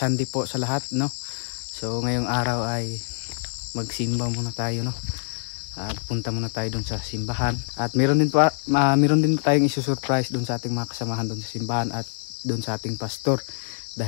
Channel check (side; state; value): right; silent; digital silence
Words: po sa lahat, no? So ngayong araw ay magsimba muna tayo, no? At punta muna tayo doon sa simbahan. At meron din tayong isusurprise doon sa ating mga kasamahan doon sa simbahan at doon sa ating pastor.